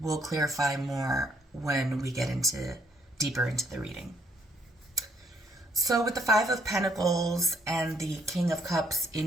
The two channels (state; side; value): normal; both; correlation 0.69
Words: clarify more when we get deeper into the reading. So with the Five of Pentacles and the King of Cups